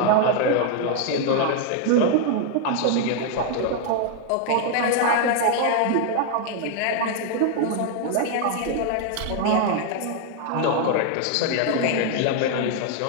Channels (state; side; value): different; both; correlation 0.00